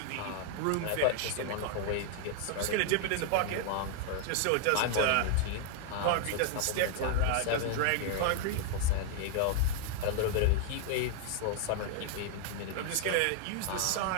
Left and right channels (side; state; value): both; different; correlation 0.00